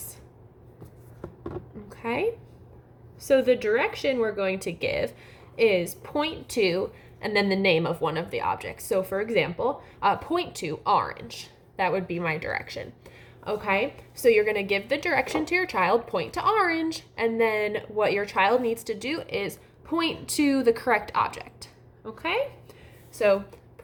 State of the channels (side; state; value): both; identical; correlation 1.00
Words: Okay, so the direction we're going to give is point to, and then the name of one of the objects. So for example, point to orange. That would be my direction. Okay, so you're going to give the direction to your child, point to orange, and then what your child needs to do is point to the correct object. Okay, so